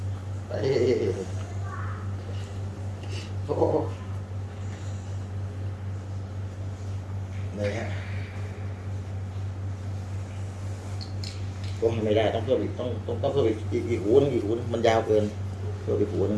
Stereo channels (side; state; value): both; identical; correlation 1.00